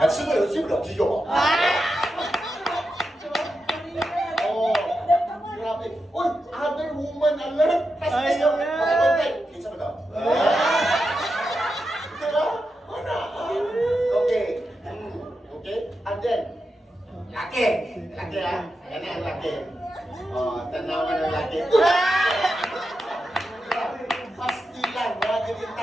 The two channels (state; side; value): normal; both; correlation 0.88